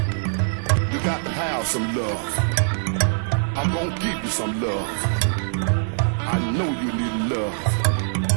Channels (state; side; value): silent; left; digital silence